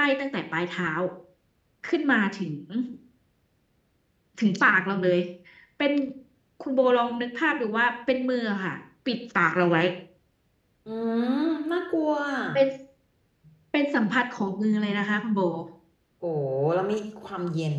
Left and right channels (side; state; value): both; identical; correlation 1.00